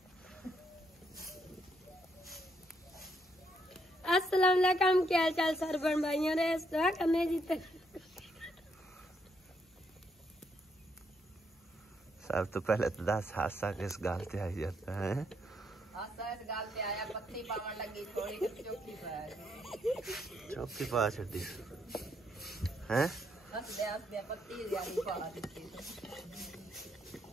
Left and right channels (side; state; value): both; normal; correlation 0.74